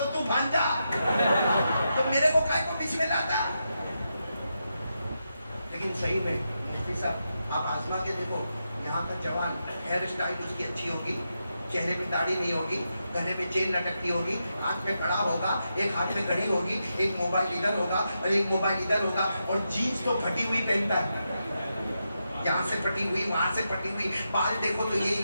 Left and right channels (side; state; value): both; inverted; correlation -0.86